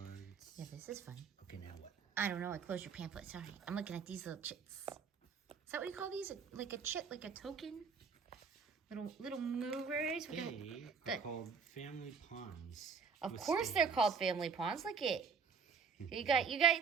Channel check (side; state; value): left; quieter; 5.8 dB